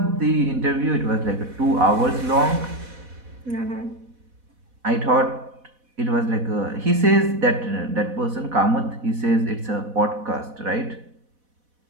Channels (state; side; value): late; left; 4.1 ms